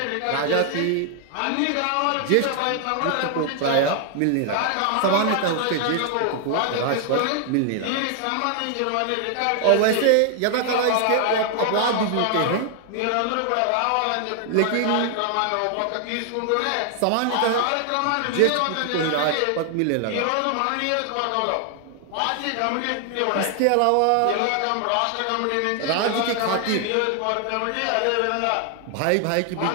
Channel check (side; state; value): both; different; correlation 0.00